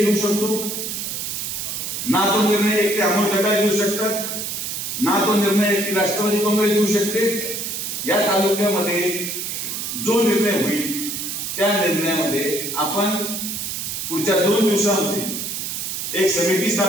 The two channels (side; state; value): right; noise; hiss, 4 dB below the sound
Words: घेऊ शकतो, ना तो निर्णय एकटे अमोल गटार घेऊ शकतात, ना तो निर्णय एकटी राष्ट्रवादी काँग्रेस घेऊ शकते. या तालुक्यामध्ये जो निर्णय होईल त्या निर्णयामध्ये आपण पुढच्या 2 दिवसांमध्ये एक समिती